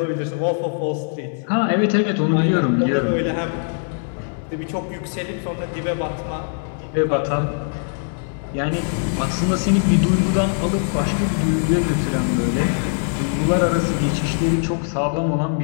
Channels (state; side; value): silent; right; digital silence